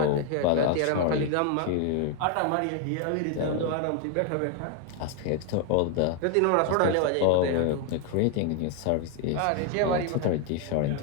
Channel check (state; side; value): different; both; correlation 0.00